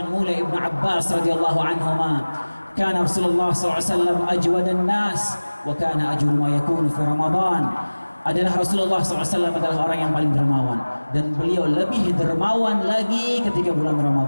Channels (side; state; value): both; inverted; correlation -1.00